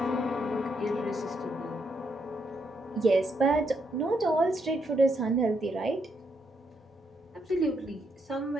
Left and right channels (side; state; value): both; normal; correlation 0.77